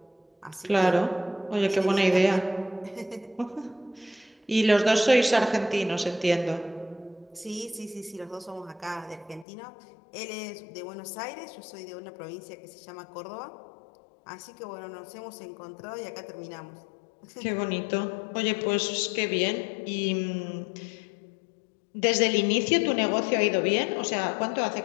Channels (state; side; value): drops out; right; at 9.5 s